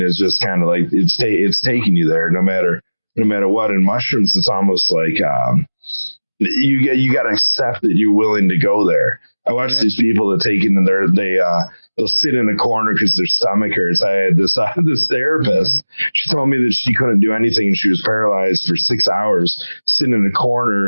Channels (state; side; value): inverted; both; correlation -1.00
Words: is just kind of like it's taking you there, no matter what. In mushrooms, it's almost like you got to accept that you're willing to go there. I watch these people that take it and they'll sit in a corner because their stomach hurts. I had this therapist. She told me that she couldn't do anything and she was paralyzed for 6 hours, sitting in a